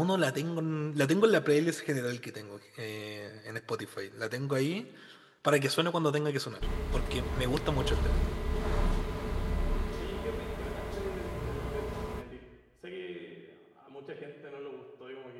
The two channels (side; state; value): both; identical; correlation 1.00